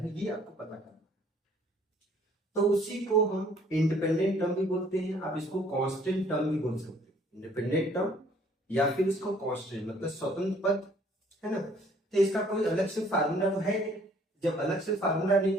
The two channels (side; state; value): both; normal; correlation 0.59